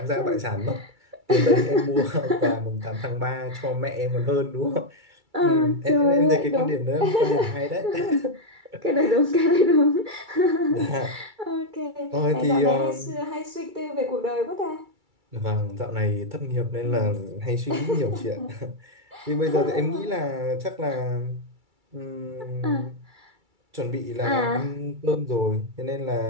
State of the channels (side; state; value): left; late; 2.3 ms